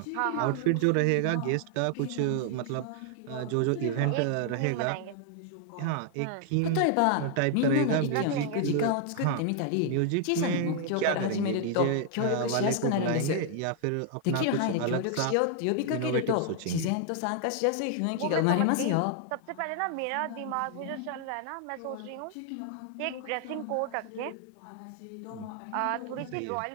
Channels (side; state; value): both; different; correlation 0.00